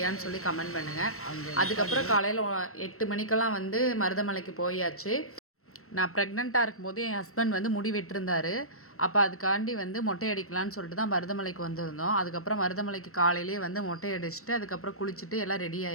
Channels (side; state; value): right; late; 0.63 ms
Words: சொல்லி கமெண்ட் பண்ணுங்கள். அதுக்கப்புறம் காலையில் 8 மணிக்கெல்லாம் வந்து மருதமலைக்கு போயாச்சு. நான் ப்ரெக்னெண்ட்டாக இருக்கும்போது என் ஹஸ்பண்ட் வந்து முடி வெட்டிருந்தார். அப்போ அதுக்காண்டி வந்து மொட்டை அடிக்கலான்னு சொல்லிட்டு தான் மருதமலைக்கு வந்திருந்தோம். அதுக்கப்புறம் மருதமலைக்கு காலையிலேயே வந்து மொட்டை அடிச்சுட்டு அதுக்கப்புறம் குளிச்சுட்டு எல்லாம் ரெடி